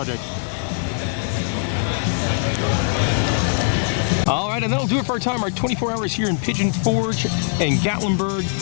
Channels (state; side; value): silent; right; digital silence